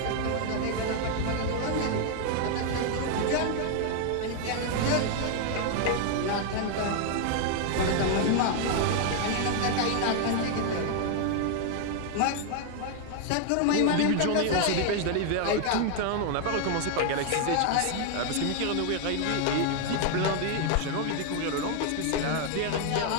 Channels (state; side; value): different; both; correlation 0.00